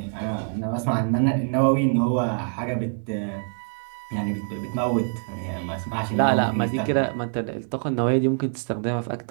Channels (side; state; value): left; silent; 62 dB below the other